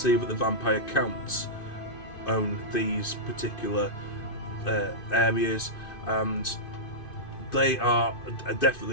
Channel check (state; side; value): late; right; 2.5 ms